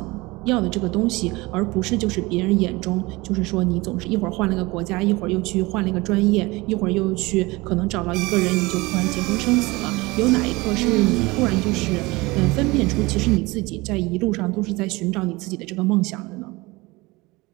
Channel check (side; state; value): left; quieter; 22.6 dB